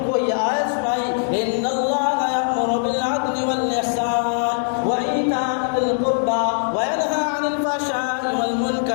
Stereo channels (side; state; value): right; silent; digital silence